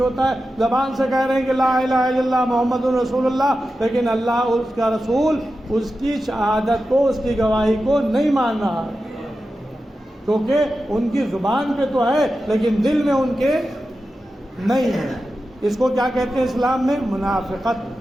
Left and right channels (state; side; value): normal; both; correlation 0.92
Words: ہوتا ہے، زبان سے کہہ رہے ہیں کہ لا الہ الا اللہ محمد رسول اللہ، لیکن اللہ اور اس کا رسول اس کی شہادت کو، اس کی گواہی کو نہیں مان رہا، کیونکہ ان کی زبان پہ تو ہے لیکن دل میں ان کے نہیں ہے۔ اس کو کیا کہتے ہیں اسلام میں؟ منافقت۔